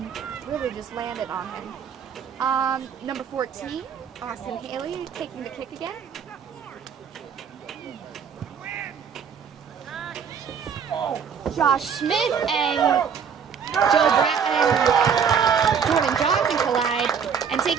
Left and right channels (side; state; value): left; quieter; 7.1 dB